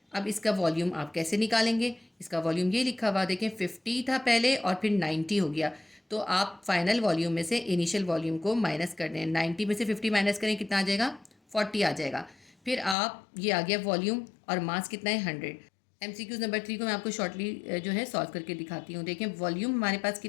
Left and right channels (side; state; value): right; drops out; at 13.0 s